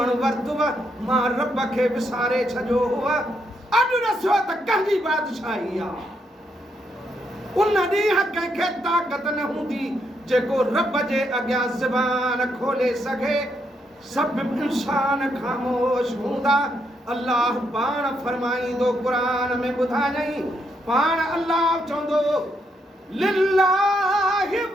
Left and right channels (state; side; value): normal; both; correlation 0.78